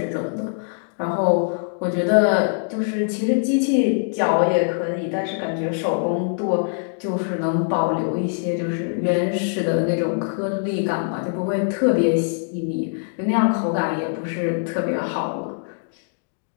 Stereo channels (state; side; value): silent; right; digital silence